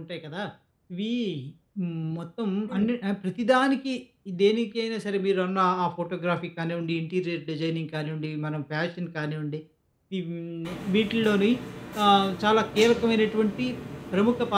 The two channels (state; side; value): identical; both; correlation 1.00